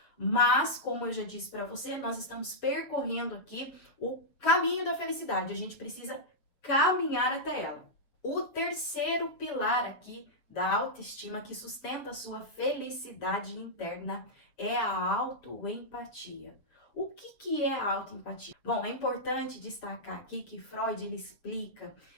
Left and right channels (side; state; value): right; late; 7.2 ms